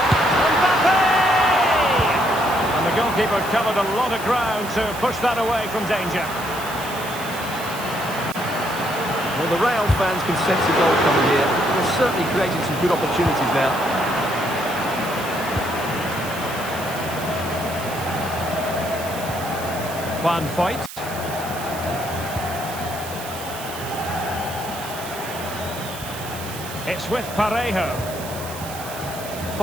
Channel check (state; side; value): noise; right; hiss, 12 dB below the sound